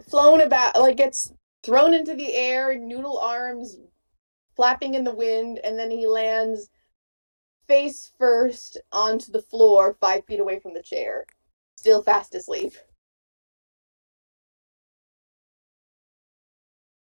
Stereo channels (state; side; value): inverted; both; correlation -1.00